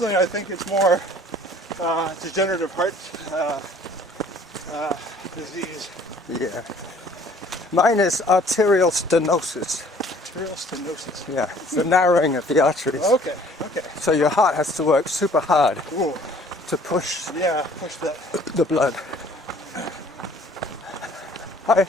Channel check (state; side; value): normal; both; correlation 0.55